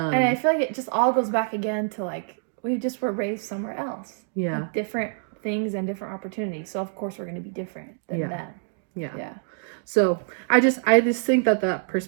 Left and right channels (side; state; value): left; silent; digital silence